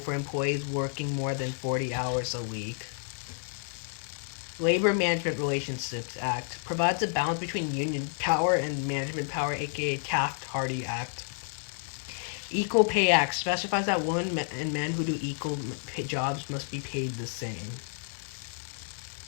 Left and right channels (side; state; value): right; silent; 58 dB below the other